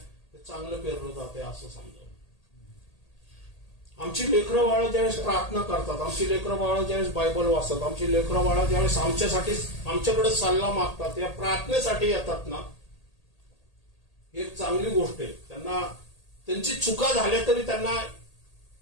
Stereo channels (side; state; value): right; late; 1.8 ms